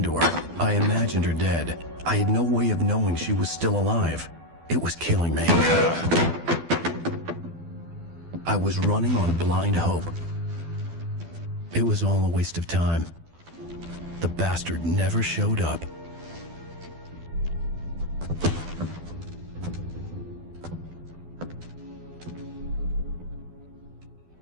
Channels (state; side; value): late; left; 12 ms